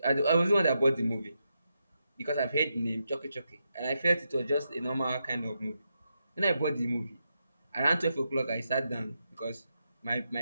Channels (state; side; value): inverted; both; correlation -0.84